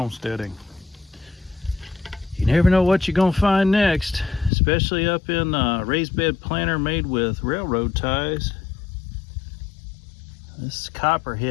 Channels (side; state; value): right; drops out; at 4.5 s